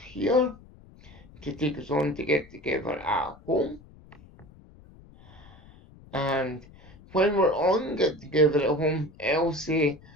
to take us on to Get Together at Home. And when we're on Get Together at Home, it'll say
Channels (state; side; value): noise; left; rumble, 23 dB below the sound